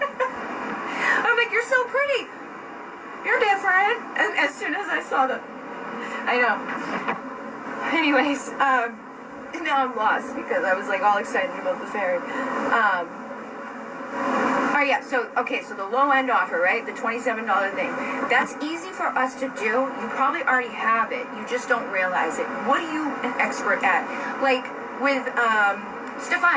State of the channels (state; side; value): identical; both; correlation 1.00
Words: I'm like, you're so pretty. You're different. And as soon as I saw I know. Anyways, now I'm lost because I was like all excited about the fairy. Oh yeah, so the low end offer, right? The $27 thing. That's easy for us to do. You probably already have it. You just don't realize it. What are you an expert at? Like with